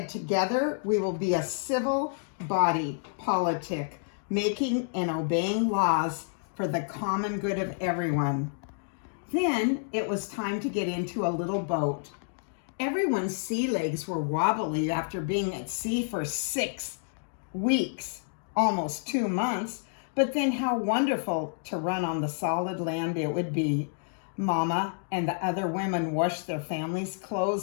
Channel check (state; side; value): silent; right; digital silence